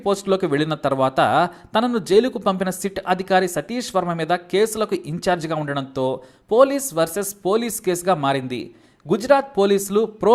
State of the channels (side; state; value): both; identical; correlation 1.00